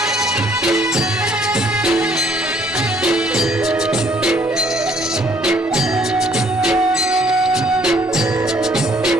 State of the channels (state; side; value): normal; both; correlation 0.63